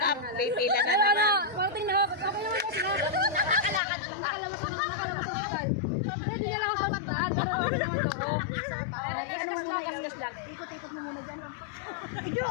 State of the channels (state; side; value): drops out; right; at 3.8 s